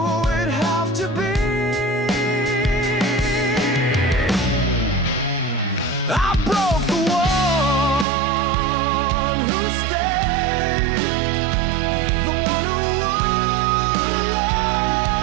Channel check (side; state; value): left; drops out; at 8.1 s